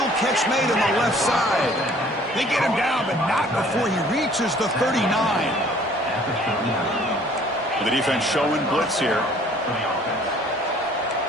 catch made on the left side. They get him down, but not before he reaches the 39. The defense showing blitz here.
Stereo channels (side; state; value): both; normal; correlation 0.55